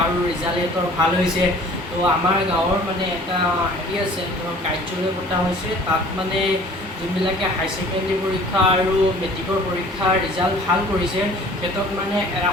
আৰু ৰিজাল্ট সিহঁতৰ ভাল হৈছে। তো আমাৰ গাঁৱৰ মানে এটা হেৰি আছে, ধৰক কাৰ্যালয় পতা হৈছে। তাত মানে যোনবিলাকে হাই ছেকেণ্ডেৰী পৰীক্ষা আৰু মেট্ৰিকৰ পৰীক্ষাৰ ৰিজাল্ট ভাল কৰিছে সিহঁতক মানে এটা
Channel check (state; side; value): normal; both; correlation 0.49